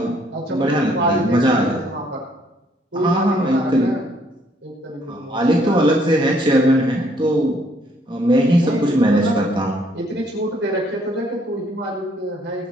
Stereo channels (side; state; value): both; normal; correlation 0.66